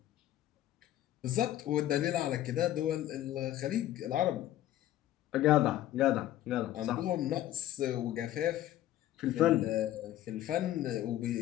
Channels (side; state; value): right; quieter; 13.4 dB